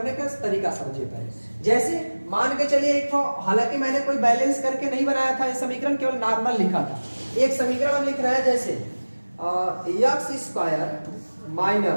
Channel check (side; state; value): both; inverted; correlation -1.00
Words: का तरीका समझिए पहले। जैसे मान के चलिए एक ठो, हालांकि मैंने कोई बैलेंस करके नहीं बनाया था, ये समीकरण केवल नॉर्मल लिखा था। एक समीकरण हम लिख रहे हैं, जैसे x²